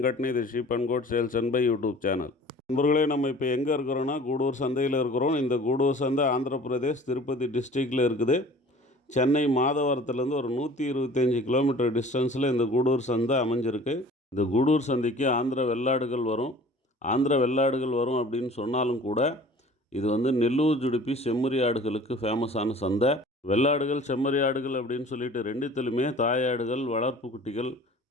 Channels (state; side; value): normal; both; correlation 0.46